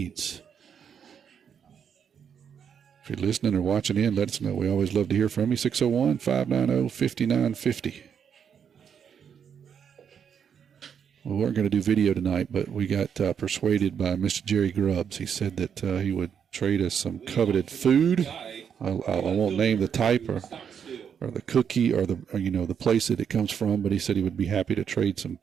If you're listening or watching in, let us know. We always love to hear from you. 601-590-5950. We weren't going to do video tonight, but we got persuaded by Mr. Jerry Grubbs. He said that he would trade us some coveted food. I won't name the type or the cookie or the place that it comes from, but he said he would be happy to trade some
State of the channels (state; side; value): quieter; left; 7.7 dB